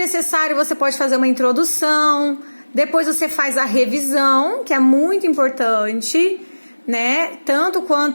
você pode fazer uma introdução, depois você faz a revisão, que é muito importante, né? Tanto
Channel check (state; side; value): inverted; both; correlation -1.00